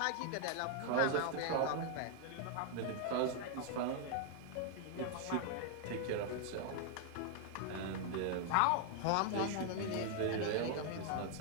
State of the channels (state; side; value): different; both; correlation 0.00